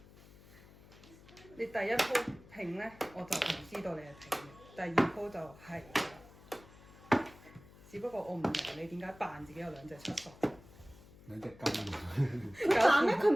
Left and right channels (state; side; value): noise; left; hum, 22 dB below the sound